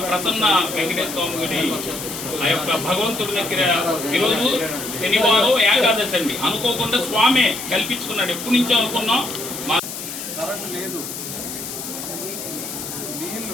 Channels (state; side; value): noise; left; hiss, 8 dB below the sound